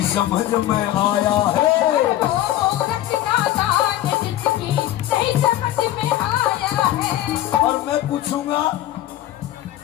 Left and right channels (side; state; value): right; quieter; 13.7 dB